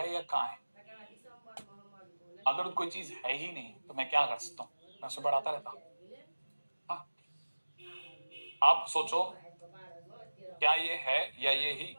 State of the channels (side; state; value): both; inverted; correlation -1.00